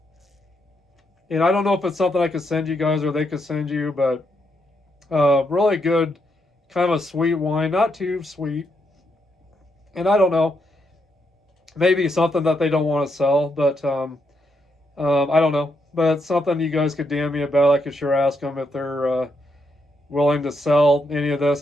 And I don't know if it's something I could send you guys or they could send you, but really good, kind of a sweet wine, not too sweet. And I don't know, maybe something that they don't want to sell, but I don't know. But it's something you guys could DM me about. I could sure ask them if they're willing to sell any of this.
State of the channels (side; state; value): both; normal; correlation 0.79